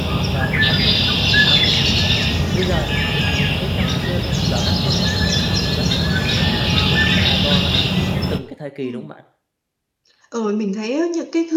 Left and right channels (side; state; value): both; identical; correlation 1.00